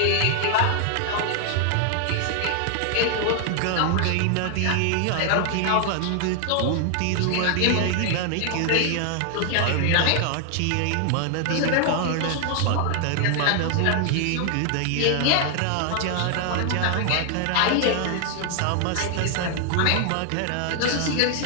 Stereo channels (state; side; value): different; both; correlation 0.00